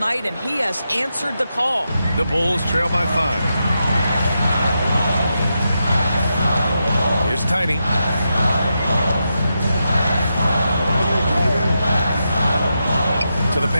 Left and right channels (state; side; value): inverted; both; correlation -0.86